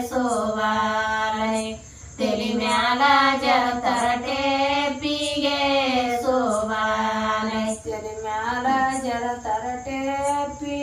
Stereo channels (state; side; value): identical; both; correlation 1.00